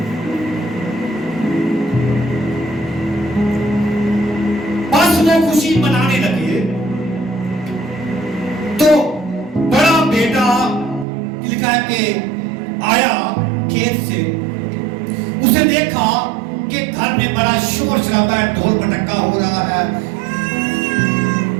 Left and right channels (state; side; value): drops out; left; at 11.1 s